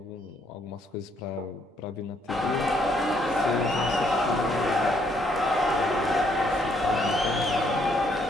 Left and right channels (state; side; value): normal; both; correlation 0.70